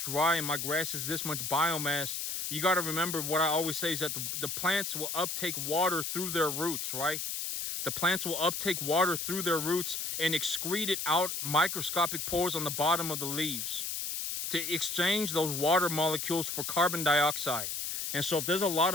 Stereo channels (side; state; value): left; noise; hiss, 3 dB below the sound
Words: and my grass is this much biomass, you got to remember what I always say is that the plants will uptake water through their roots, right? The plants will uptake water through their roots and excrete it out microscopic pores on the bottom of the leaves to exchange those water molecules for carbon dioxide. And so if there's a lot